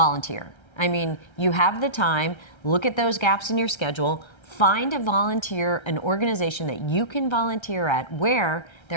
I mean, you have the time, look at those gaps in your schedule, find a volunteer, an organization that you can volunteer at where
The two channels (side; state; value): right; late; 1.3 ms